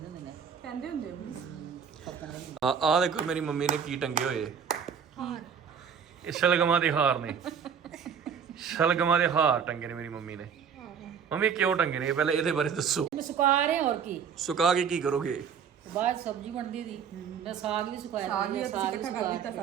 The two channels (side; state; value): left; quieter; 7.2 dB